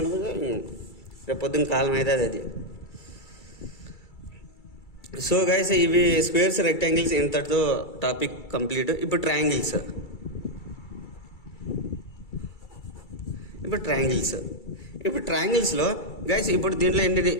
రేపు పొద్దున్న కాలం అయితే అది. సో గైస్ ఇవి స్క్వేర్స్, రెక్టాంగిల్స్ ఇంతటితో టాపిక్ కంప్లీట్. ఇప్పుడు ట్రయాంగిల్స్లో గైస్ ఇప్పుడు దీంట్లో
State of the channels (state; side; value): late; right; 2.3 ms